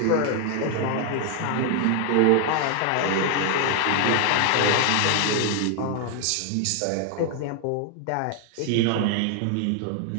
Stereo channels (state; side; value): different; both; correlation 0.00